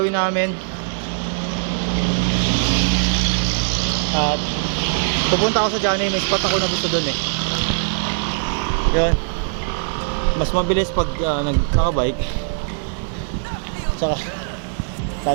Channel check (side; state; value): left; silent; digital silence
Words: namin. At pupunta ako sa Johnny. May spot ako na gusto dun eh. Yun. Mas mabilis pag nakabike. Saka